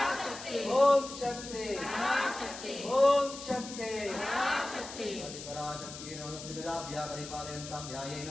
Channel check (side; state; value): left; noise; hiss, 11 dB below the sound